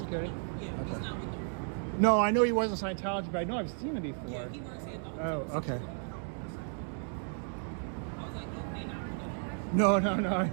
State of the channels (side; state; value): left; silent; 55 dB below the other